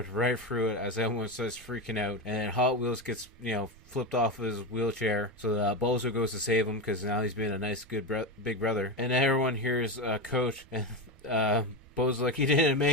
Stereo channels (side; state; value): right; noise; rumble, 23 dB below the sound